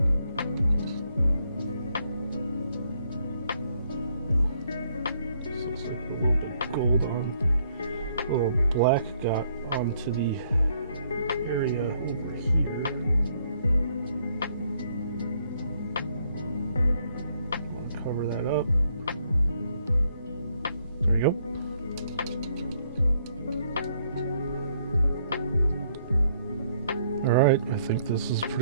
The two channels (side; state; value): both; inverted; correlation -0.69